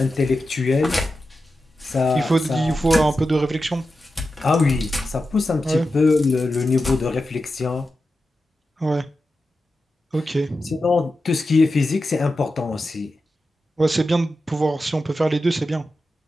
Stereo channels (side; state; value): both; normal; correlation 0.91